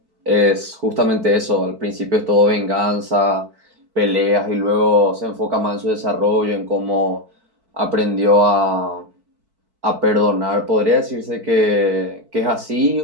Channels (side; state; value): left; late; 4.6 ms